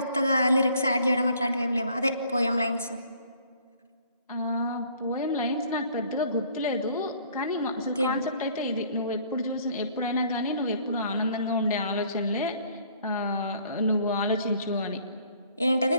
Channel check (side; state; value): both; inverted; correlation -0.58